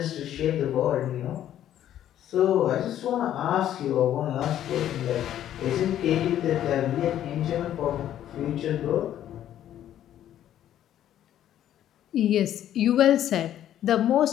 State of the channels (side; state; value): right; quieter; 11.4 dB